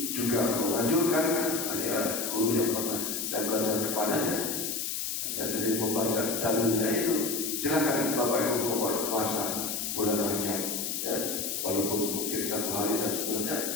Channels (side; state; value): left; noise; hiss, 2 dB below the sound